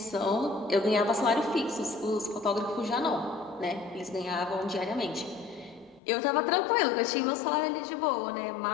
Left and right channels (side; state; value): right; drops out; at 6.0 s